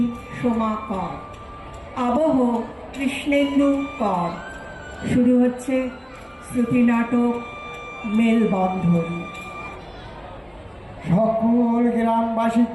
সোমা কর। আবহ কৃষ্ণেন্দু কর। শুরু হচ্ছে শ্রুতি নাটক মেলবন্ধন। সকল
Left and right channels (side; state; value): both; identical; correlation 1.00